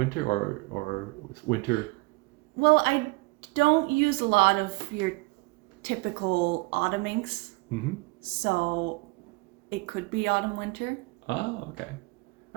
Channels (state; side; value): quieter; left; 25.8 dB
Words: or winter? Well, I don't use a lot of your typical autumn inks. Mm-hmm. So it could be autumn, winter. Oh, okay.